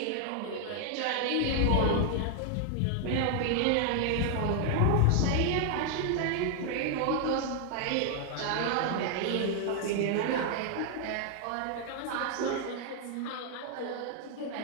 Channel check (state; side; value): different; both; correlation 0.00